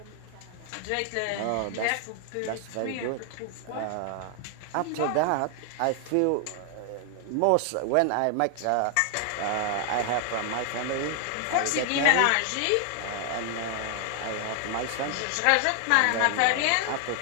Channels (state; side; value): different; both; correlation 0.00